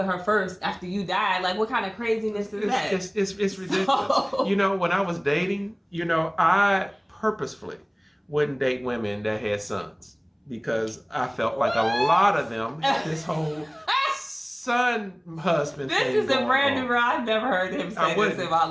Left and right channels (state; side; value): identical; both; correlation 1.00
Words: her first after you die. Like, what kind of craziness is that? It's ridiculous. So, when I was dating, I purposefully wouldn't date women that had sons, because I felt like a lot of them had this whole son husband thing. This is a brand new ride. I've never heard him say this in my